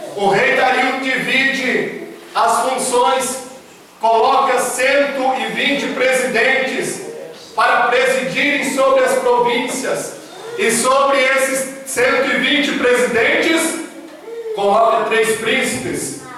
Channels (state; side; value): identical; both; correlation 1.00